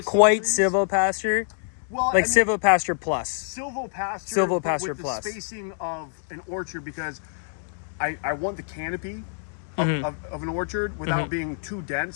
quite silvopasture. Well, like silvopasture plus. Silvopasture with plus. The spacing of an orchard because I want the canopy of an orchard without being too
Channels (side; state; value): right; silent; 61 dB below the other